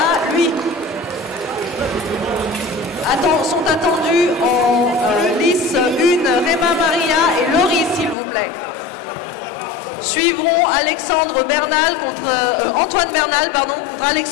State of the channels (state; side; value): drops out; right; at 8.2 s